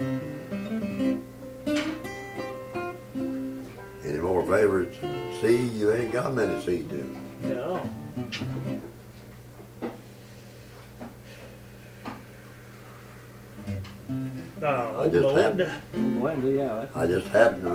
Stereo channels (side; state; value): both; identical; correlation 1.00